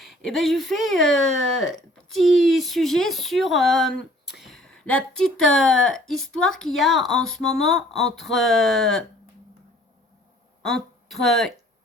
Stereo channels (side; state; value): both; normal; correlation 0.55